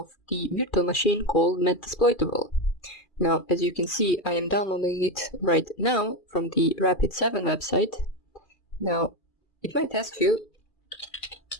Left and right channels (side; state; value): right; late; 2.4 ms